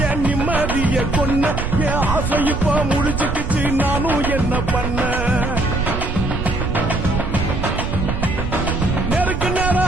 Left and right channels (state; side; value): noise; right; rumble, 3 dB below the sound